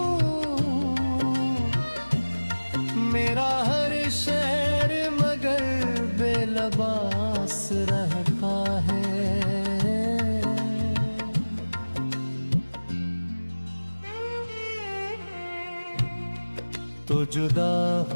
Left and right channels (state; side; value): inverted; both; correlation -1.00